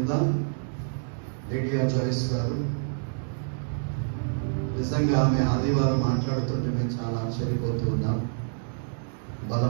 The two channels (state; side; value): silent; left; digital silence